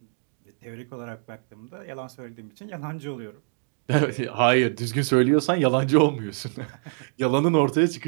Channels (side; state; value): left; silent; digital silence